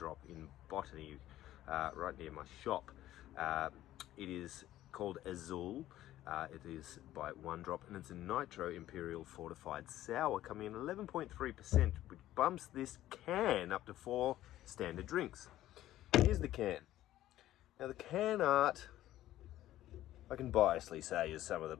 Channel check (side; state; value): right; quieter; 14.0 dB